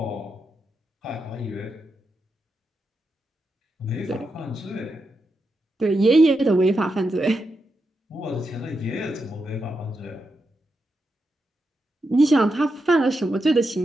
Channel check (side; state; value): both; normal; correlation 0.86